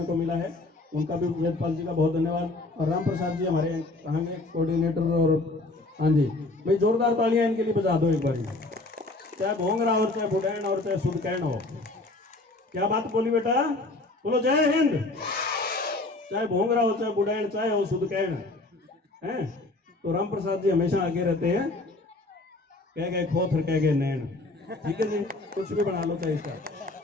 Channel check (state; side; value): quieter; right; 3.0 dB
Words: को मिला है। उनका भी वेदपाल जी का बहुत धन्यवाद। और राम प्रसाद जी हमारे कहाँ के कोऑर्डिनेटर, और हाँ जी भाई जोरदार तालियां इनके लिए बजा दो एक बार, चाहे भोंगरा हो, चाहे बुडैन और चाहे सुदकैन हो। क्या बात बोली बेटा, बोलो जय हिंद। चाहे भोंगरा हो, चाहे बुडैन, चाहे हो सुदकैन है, तो राम प्रसाद जी हमेशा आगे रहते हैं, कह गए खोथर कह गए नैन, ठीक है जी, कुछ भी बना लो चाहे इसका,